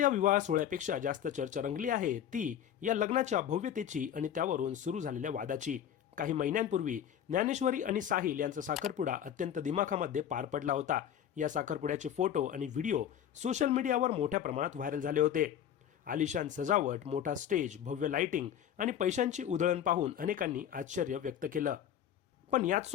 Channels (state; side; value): quieter; right; 9.7 dB